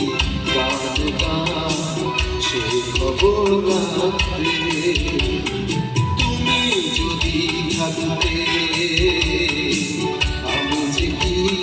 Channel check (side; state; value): both; identical; correlation 1.00